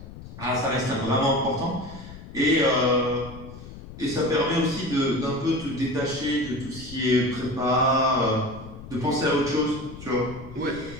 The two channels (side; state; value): left; noise; rumble, 14 dB below the sound